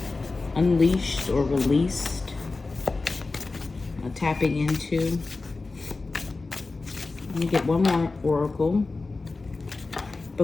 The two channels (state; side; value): quieter; right; 3.7 dB